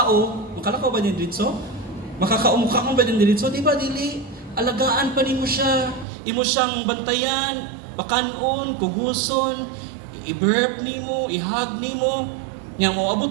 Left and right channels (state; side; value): drops out; left; at 6.1 s